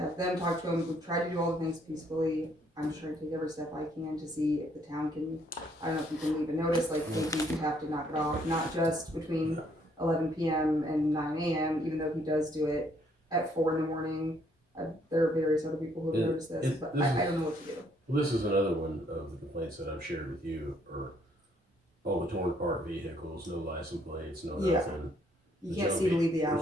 have them talk to him. We've tried to do all the things peacefully. I'm trying to take every step I can to see if the town can, I don't know if you can leave a notice, like, maybe you have to knock it off, not just between 11 p.m. and 9 a.m., even though he does do it at 4 in the morning. There are various other people who have noticed this, but I don't know what to do. Well, this is another one of the complaints that I've shared with you, or all the torn apart vehicles, no license plates, no Yeah. nothing. You can't see to leave the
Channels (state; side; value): normal; both; correlation 0.67